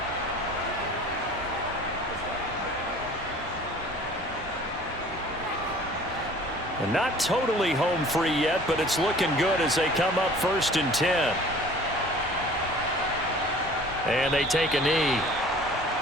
And not totally home free yet, but it's looking good as they come up 1st and 10. And they take a knee.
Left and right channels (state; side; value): normal; both; correlation 0.48